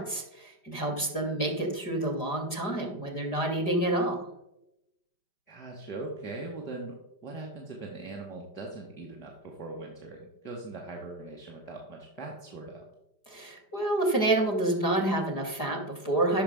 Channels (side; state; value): right; late; 5.1 ms